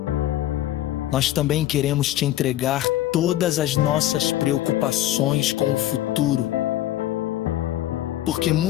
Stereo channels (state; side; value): quieter; right; 13.9 dB